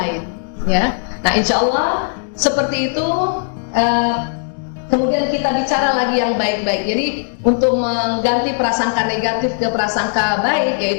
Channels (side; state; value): right; silent; digital silence